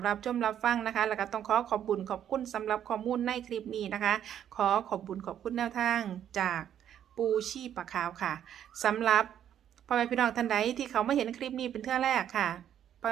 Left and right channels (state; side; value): quieter; left; 10.0 dB